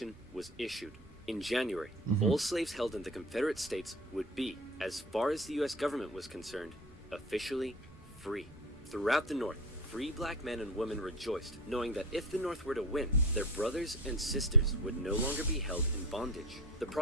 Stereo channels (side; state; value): both; normal; correlation 0.32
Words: was issued. In January, all slaves held in the Confederate States would be, as far as the U.S. government was concerned, officially free. Throughout the North, free black men and women rejoiced, knowing that if the North were to win, their brothers and sisters would no longer be held in bondage. The